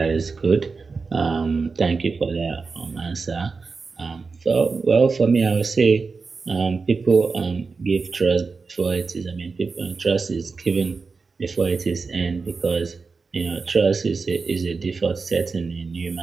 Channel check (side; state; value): left; quieter; 4.5 dB